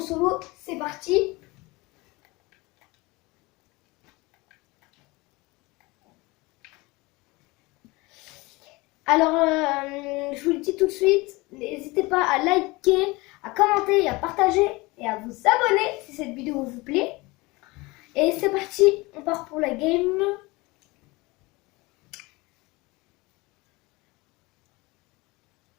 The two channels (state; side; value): quieter; right; 23.2 dB